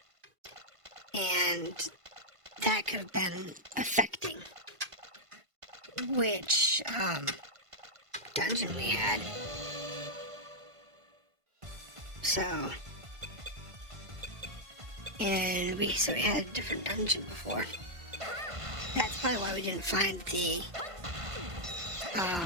And that could have been affecting which dungeon we had. So, and we had a different dungeon before. That's probably why we didn't find the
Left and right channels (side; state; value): left; late; 1.5 ms